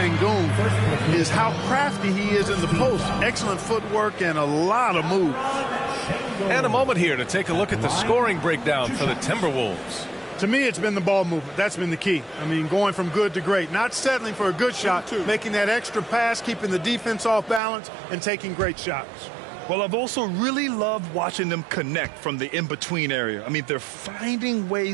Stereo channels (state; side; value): drops out; left; at 17.6 s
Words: is how crafty he is in the post. Excellent footwork and a lot of moves. And a moment here to take a look at the scoring breakdown for the Timberwolves. To me, it's been the ball movement. That's been the key. I mean, going from good to great. Not settling for a good shot, making that extra pass, keeping the defense off balance, and taking great shots. Well, I've also really loved watching them connect from the in-between area. I mean, they're finding